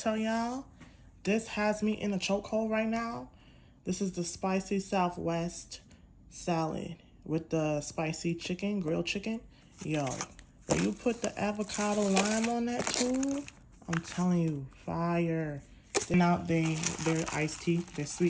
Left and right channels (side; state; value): both; identical; correlation 1.00